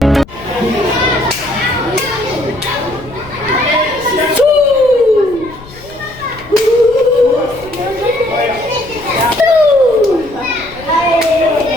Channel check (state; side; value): noise; left; rumble, 20 dB below the sound